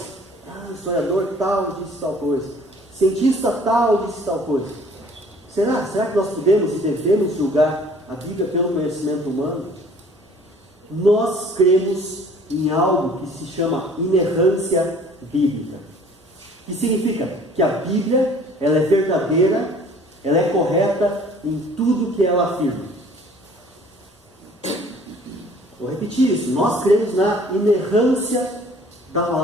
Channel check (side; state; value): both; normal; correlation 0.53